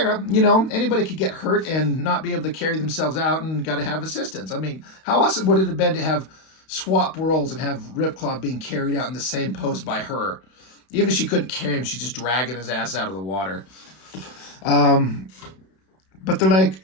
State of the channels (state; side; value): late; right; 32 ms